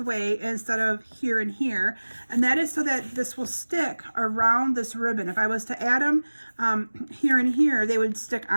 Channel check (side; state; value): both; inverted; correlation -1.00